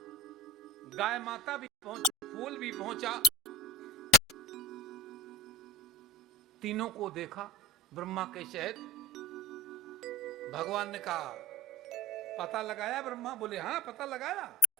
गाय माता भी पहुंची, फूल भी पहुंचा, तीनों को देखा ब्रह्मा के शहद। भगवान ने कहा पता लगाया? ब्रह्मा बोले हाँ पता लगाया,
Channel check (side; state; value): both; normal; correlation 0.31